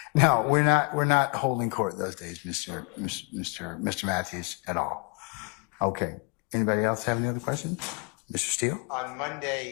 No, we're not holding court those days, Mr. Matthews, at all. Okay. Anybody else have any other questions? Mr. Steele? On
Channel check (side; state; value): right; quieter; 34.8 dB